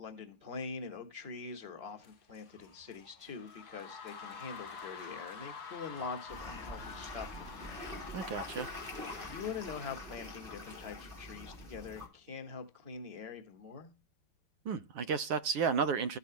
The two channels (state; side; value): late; left; 8.4 ms